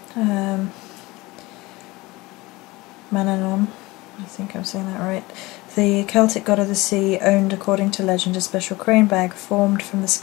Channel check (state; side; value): quieter; right; 21.4 dB